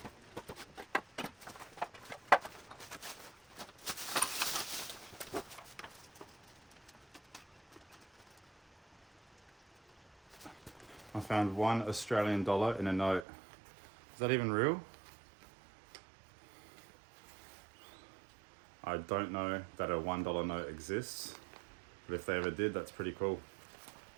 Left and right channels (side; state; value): left; drops out; at 13.2 s